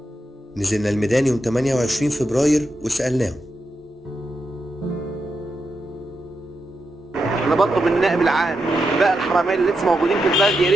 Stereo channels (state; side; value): normal; both; correlation 0.86